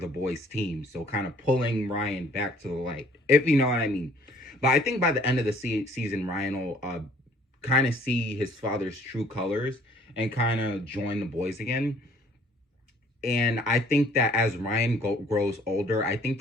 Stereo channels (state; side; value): normal; both; correlation 0.57